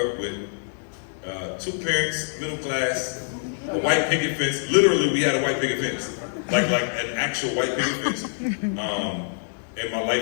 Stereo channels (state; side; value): silent; right; digital silence